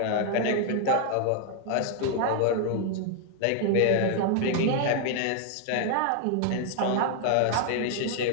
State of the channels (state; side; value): different; both; correlation 0.00